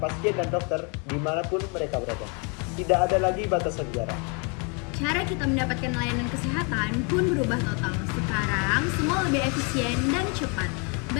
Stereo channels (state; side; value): quieter; right; 34.3 dB